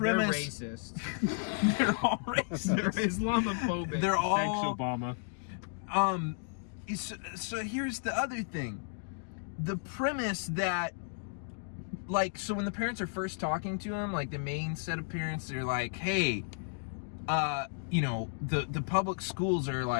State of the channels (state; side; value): silent; right; digital silence